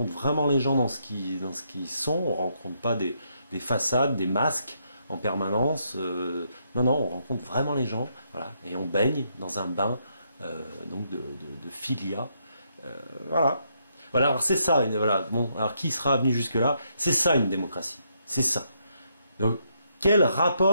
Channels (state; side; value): inverted; both; correlation -0.76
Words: vraiment les gens dans ce qu'ils sont, on ne rencontre pas des façades, des masques en permanence. Non, on rencontre vraiment les gens, voilà, et on baigne dans un bain donc de philia. Voilà. Voilà, alors c'est ça, voilà. Bon, alors qui sera venu jusque-là? C'est ça une démocratie. C'est ça. Donc, quel